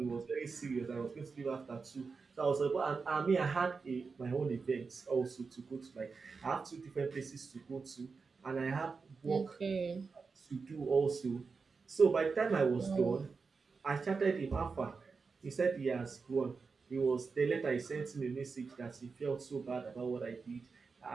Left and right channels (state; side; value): quieter; left; 4.8 dB